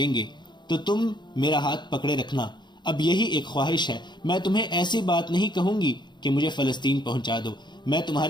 گے تو تم میرا ہاتھ پکڑے رکھنا۔ اب یہی ایک خواہش ہے، میں تمہیں ایسی بات نہیں کہوں گی کہ مجھے فلسطین پہنچا دو۔ میں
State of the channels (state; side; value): late; right; 0.22 ms